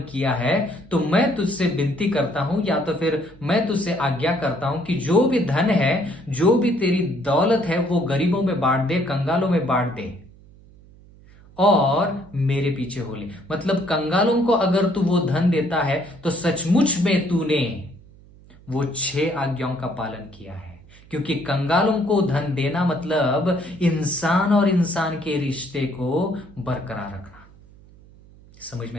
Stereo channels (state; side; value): noise; right; hum, 24 dB below the sound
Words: किया है, तो मैं तुझसे विनती करता हूं, या तो फिर मैं तुझसे आज्ञा करता हूं कि जो भी धन है, जो भी तेरी दौलत है, वो गरीबों में बांट दे, कंगालों में बांट दे, और मेरे पीछे हो ले। मतलब कंगालों को अगर तू वो धन देता है, तो सचमुच में तूने वो 6 आज्ञाओं का पालन किया है। क्योंकि कंगालों को धन देना मतलब इंसान और इंसान के रिश्ते को बरकरार रखना। समझ